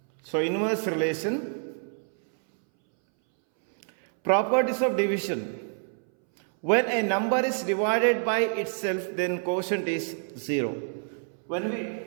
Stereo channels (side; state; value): left; silent; 60 dB below the other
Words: So inverse relation. Properties of division. When a number is divided by itself, then quotient is 0. When we